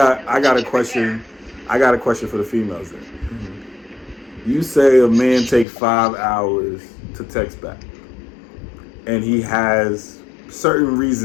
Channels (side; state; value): right; drops out; at 5.7 s